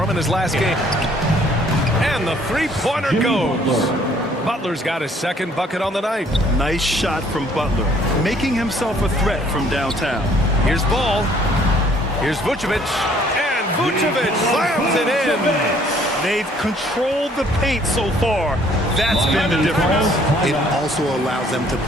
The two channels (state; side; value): normal; both; correlation 0.60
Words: him in his last game. And the three-pointer goes. Butler's got his second bucket on the night. Nice shot from Butler, making himself a threat from downtown. Here's Ball. Here's Vucevic. And Vucevic slams it in. They've controlled the paint so far. That's been the difference. It also allows them to